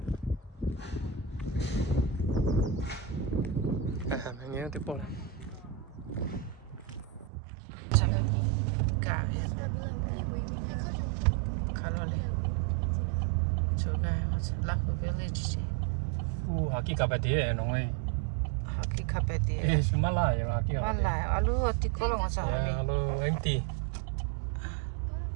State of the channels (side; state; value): left; drops out; at 7.3 s